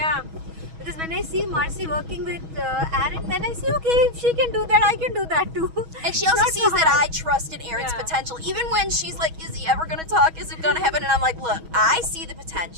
because when I see Marci working with Aaron, then I see, okay, if she can do that, I can do that too. And she It's also not sees so that hard. I trust in Aaron's Yeah. potential. Even when she's like, is he ever going to talk? Is it going to happen? And I'm like, look, I see the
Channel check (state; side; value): late; left; 6.2 ms